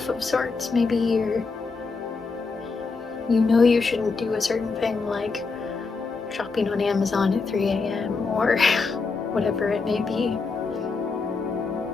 of sorts. Maybe you know you shouldn't do a certain thing, like shopping on Amazon at 3 a.m. or whatever it may be.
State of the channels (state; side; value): quieter; right; 4.4 dB